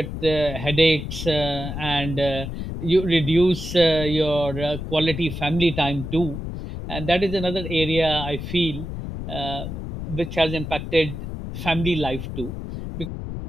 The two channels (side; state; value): left; noise; rumble, 7 dB below the sound